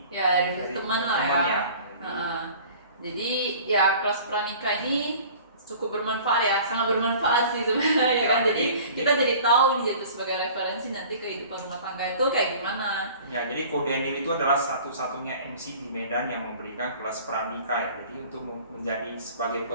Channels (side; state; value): both; inverted; correlation -0.46